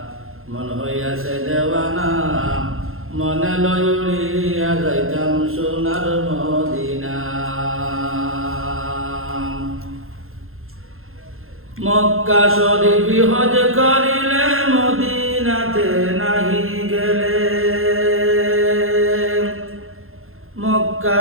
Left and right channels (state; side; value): late; left; 0.61 ms